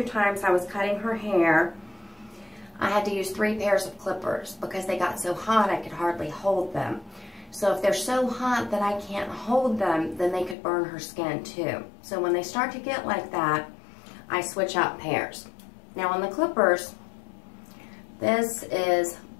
times I was cutting her hair, I had to use 3 pairs of clippers because they got so hot I could hardly hold them. So if they're so hot that I can't hold them, then they could burn her skin too. So when they start to get like that, I switch out pairs. Now on the clippers, this is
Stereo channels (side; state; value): right; drops out; at 10.6 s